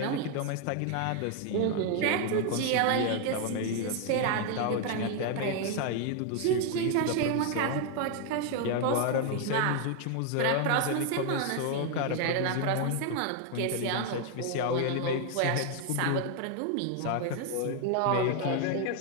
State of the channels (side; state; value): both; different; correlation 0.01